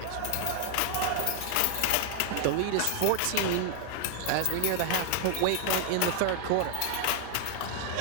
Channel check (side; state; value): both; different; correlation 0.00